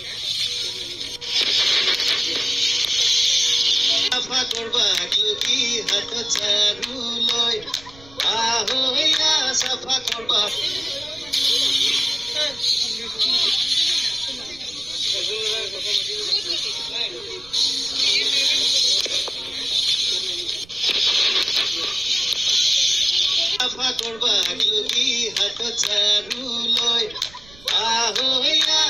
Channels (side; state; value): right; noise; rumble, 22 dB below the sound